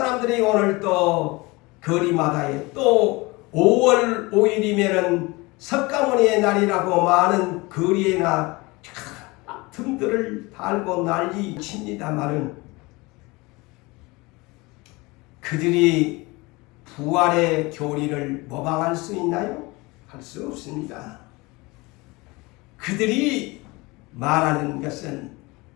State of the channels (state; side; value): quieter; right; 23.9 dB